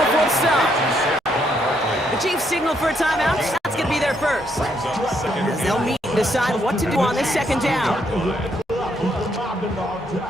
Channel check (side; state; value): both; normal; correlation 0.74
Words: the stop. The Chiefs signal for a timeout. That's going to be their first. As they'll meet and decide what to do on this 2nd down.